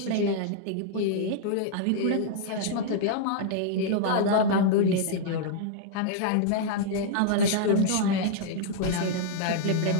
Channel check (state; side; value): different; both; correlation -0.01